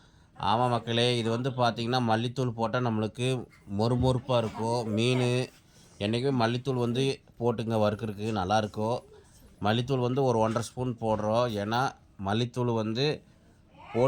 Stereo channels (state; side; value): identical; both; correlation 1.00